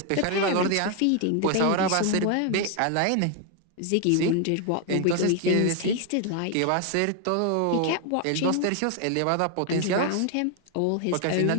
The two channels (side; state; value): both; different; correlation 0.01